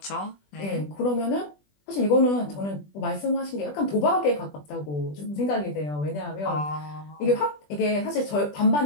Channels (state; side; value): late; right; 20 ms